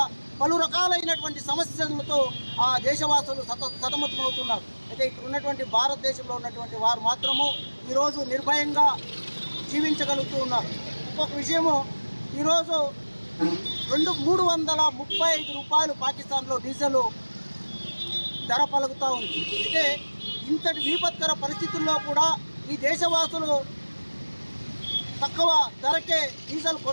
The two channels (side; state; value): both; inverted; correlation -1.00